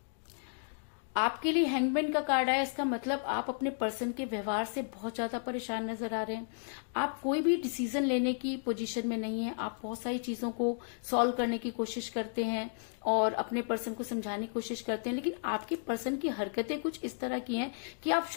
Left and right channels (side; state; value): right; silent; digital silence